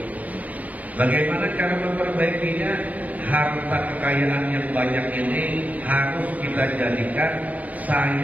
Bagaimana cara memperbaikinya? Harta kekayaan yang banyak ini harus kita jadikan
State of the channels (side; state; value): left; late; 0.073 ms